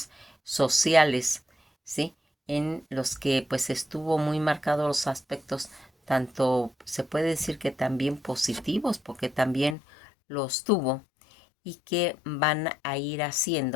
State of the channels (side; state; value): right; drops out; at 9.8 s